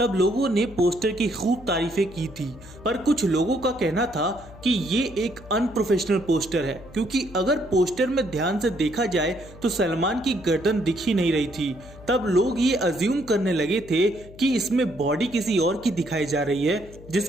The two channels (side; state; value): left; noise; hum, 19 dB below the sound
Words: लोगों ने पोस्टर की खूब तारीफें की थी, पर कुछ लोगों का कहना था कि ये एक अनप्रोफेशनल पोस्टर है, क्योंकि अगर पोस्टर में ध्यान से देखा जाए तो सलमान की गर्दन दिख ही नहीं रही थी। तब लोग ये अज्यूम करने लगे थे कि इसमें बॉडी किसी और की दिखाई जा रही है